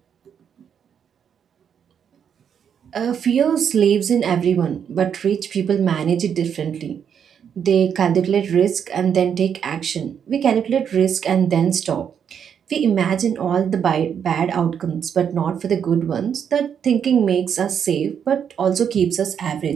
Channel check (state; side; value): quieter; left; 7.9 dB